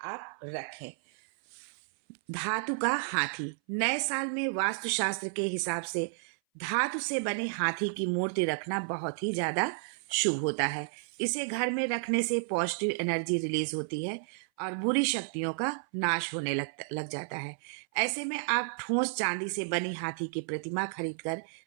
आप रखें। धातु का हाथी। नए साल में वास्तुशास्त्र के हिसाब से धातु से बने हाथी की मूर्ति रखना बहुत ही ज्यादा शुभ होता है। इसे घर में रखने से पॉजिटिव एनर्जी रिलीज होती है और बुरी शक्तियों का नाश होने लग जाता है। ऐसे में आप ठोस चांदी से बनी हाथी की प्रतिमा खरीदकर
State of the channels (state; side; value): silent; left; 57 dB below the other